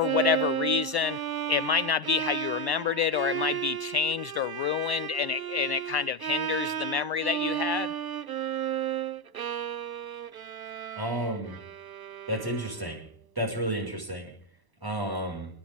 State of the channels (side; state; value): left; late; 1.0 ms